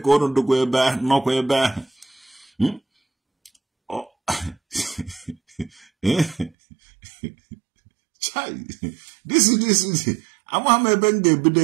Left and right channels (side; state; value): left; drops out; at 6.5 s